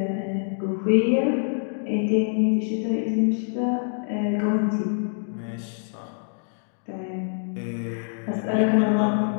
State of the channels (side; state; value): right; silent; digital silence